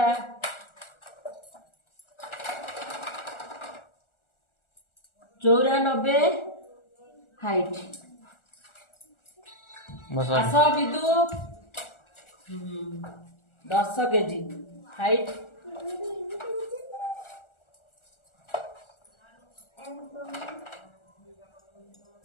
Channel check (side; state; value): right; late; 1.4 ms